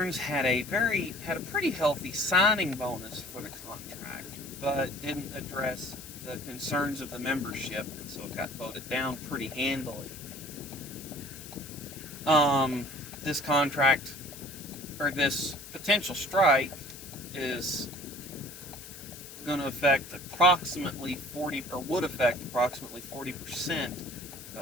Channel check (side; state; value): left; noise; hiss, 14 dB below the sound